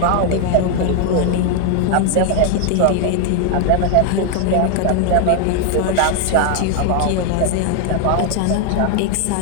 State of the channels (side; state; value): both; different; correlation 0.00